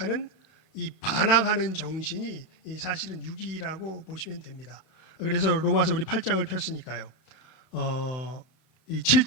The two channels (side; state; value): right; late; 31 ms